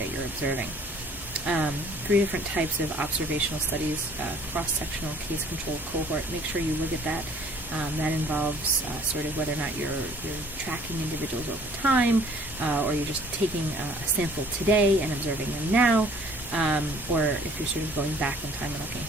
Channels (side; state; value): both; normal; correlation 0.55